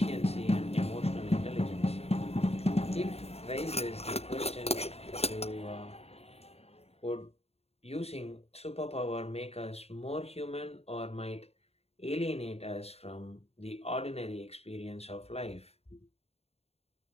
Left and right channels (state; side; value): late; right; 0.30 ms